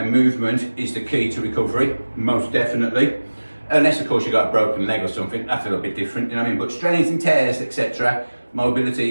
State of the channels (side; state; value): both; inverted; correlation -1.00